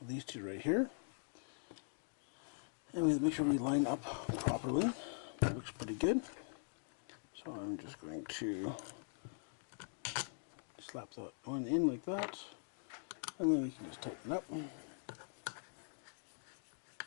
these two right here. And we make sure we line up properly. It looks pretty good. So I'm just going to slap that one in like that, and then we can just tighten it up.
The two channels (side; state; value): right; silent; digital silence